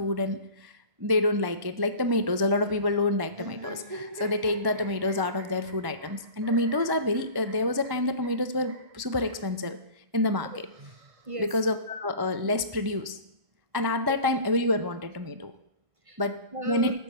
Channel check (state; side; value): late; left; 1.1 ms